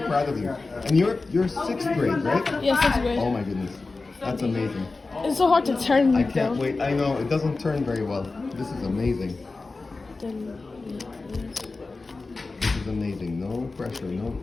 proud of you. And you're sixth grade, right? yeah, 6th grade. Oh my goodness, that's amazing. It's so hard to turn. I can't wait. I know it doesn't turn very well. This is amazing. This is amazing. No pressure. No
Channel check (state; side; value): quieter; right; 3.7 dB